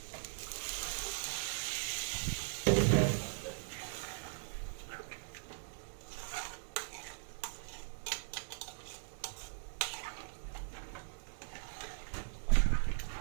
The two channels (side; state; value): left; silent; digital silence